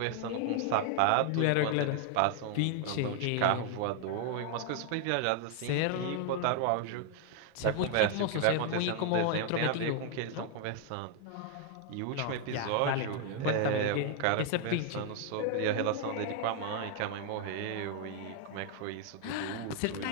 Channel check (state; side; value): different; both; correlation 0.00